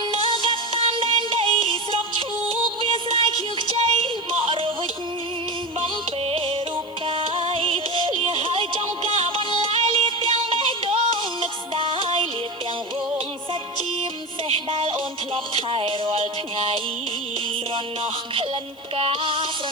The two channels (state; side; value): noise; left; hiss, 28 dB below the sound